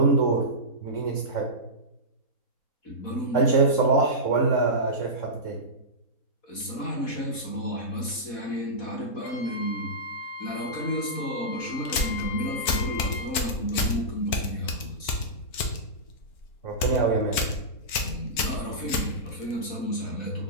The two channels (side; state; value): right; late; 4.5 ms